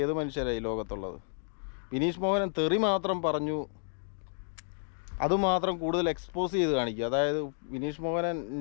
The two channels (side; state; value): right; silent; digital silence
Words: ഏത് മനുഷ്യരായി ലോകത്തുള്ളത്? വിനീഷ് മോഹനൻ തെറി മാത്രം പറഞ്ഞു, അതുമാത്രം കൂടുതൽ എക്സ്പോസ് ചെയ്ത് കാണിക്കുക. അതായത് വിനീഷ് മോഹനൻ